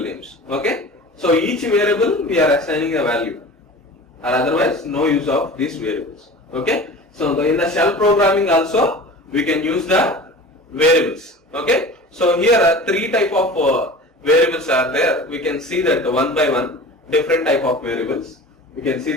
names. Okay. So each variable we are assigning a value, or otherwise no use of these variables. Okay. So in the shell programming also we can use the variables. Okay. So here are 3 type of variables are there. We can see that one by one different type of variables. We can see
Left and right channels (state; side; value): normal; both; correlation 0.38